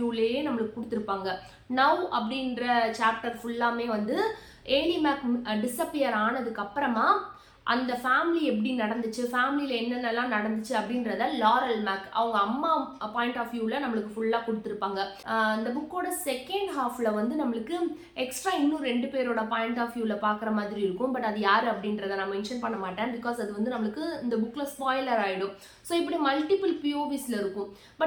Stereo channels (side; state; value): both; identical; correlation 1.00